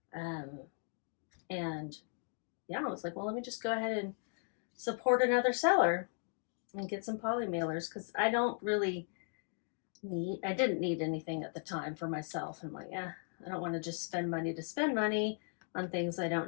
And yeah, I was like, well, let me just go ahead and support another seller and get some poly mailers, because I didn't need anything at the time for myself. I'm like, I don't want to just spend money to spend money on things I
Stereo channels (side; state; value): right; silent; 53 dB below the other